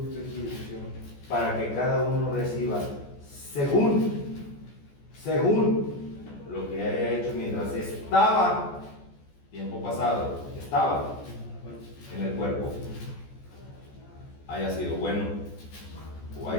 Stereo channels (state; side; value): late; right; 14 ms